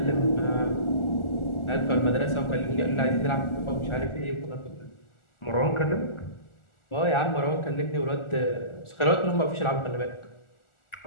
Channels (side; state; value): right; late; 1.4 ms